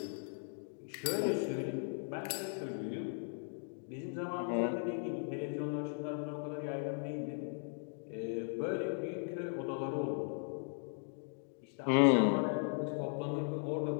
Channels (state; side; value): silent; right; 53 dB below the other